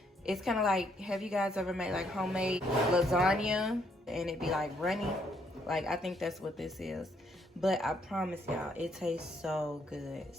It's kind of like, have you guys ever made like homemade lasagna and it be like runny? Like, I think that's what this is. But I promise y'all, it tastes so good.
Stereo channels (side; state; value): both; normal; correlation 0.71